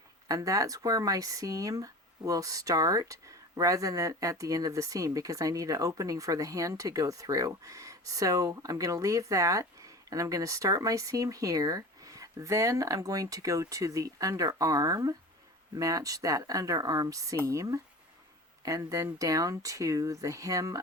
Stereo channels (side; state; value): both; normal; correlation 0.34